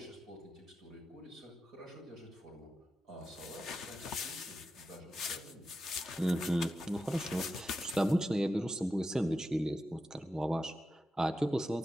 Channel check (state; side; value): normal; both; correlation 0.90